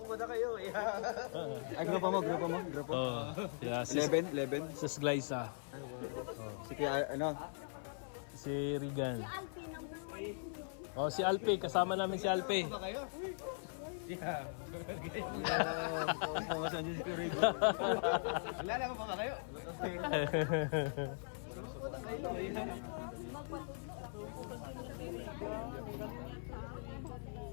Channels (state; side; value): silent; right; 51 dB below the other